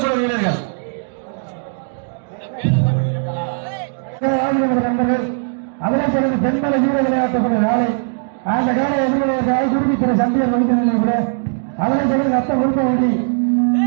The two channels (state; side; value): silent; left; 67 dB below the other